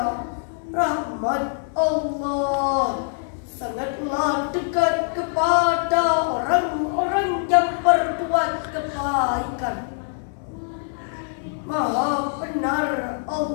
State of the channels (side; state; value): right; silent; digital silence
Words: rahmat Allah sangatlah dekat kepada orang-orang yang berbuat kebaikan. Maha benar